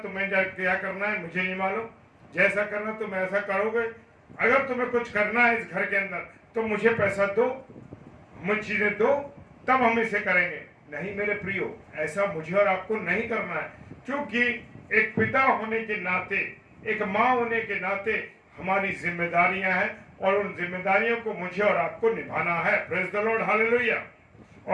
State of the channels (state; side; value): identical; both; correlation 1.00